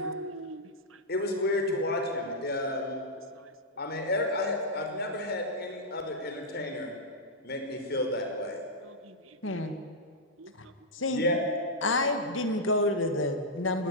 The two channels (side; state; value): both; normal; correlation -0.08